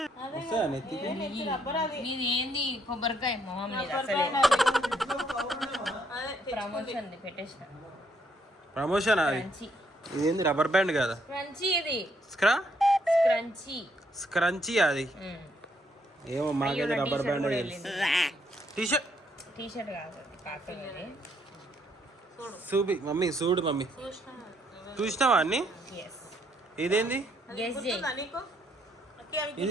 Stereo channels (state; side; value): normal; both; correlation 0.71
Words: వస్తుందా నెత్తికి? నీది ఏంది కొబ్బరికాయ మొహం ప్రమోషన్ పెట్టేసిన. ప్రమోషన్ అది. ఇదేంది రబ్బర్ బ్యాండ్ కదా? క్రంచీ ఇది క్రంచీ స్క్రంచీ అది. ఏమో మాకైతే రబ్బర్ బ్యాండ్. టీషర్ట్ కాదు కాకపోతే చూపి మమ్మీ, చూడు మమ్మీ. చూసినావా అన్ని? ఇదేంది?